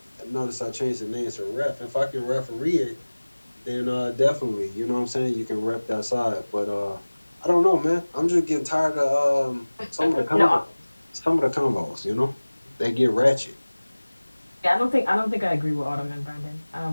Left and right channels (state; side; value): inverted; both; correlation -1.00